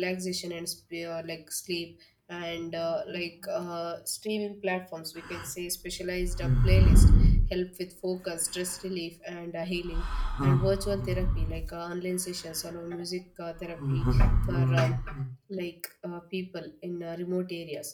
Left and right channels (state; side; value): identical; both; correlation 1.00